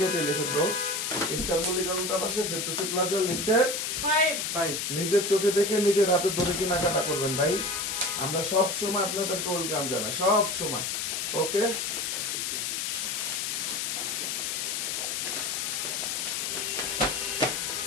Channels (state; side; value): noise; left; hiss, 1 dB below the sound